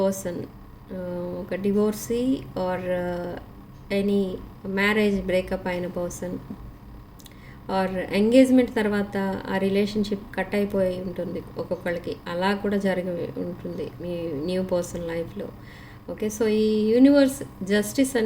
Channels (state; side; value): identical; both; correlation 1.00